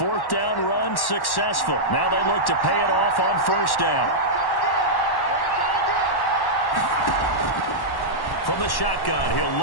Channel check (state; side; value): late; right; 1.1 ms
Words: down run successful. Now they look to pay it off on 1st down. From the shotgun, he'll